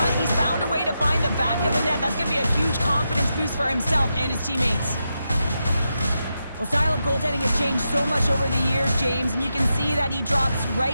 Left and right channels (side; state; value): both; inverted; correlation -0.86